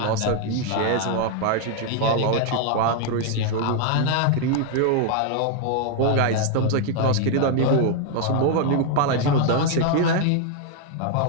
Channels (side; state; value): both; different; correlation 0.00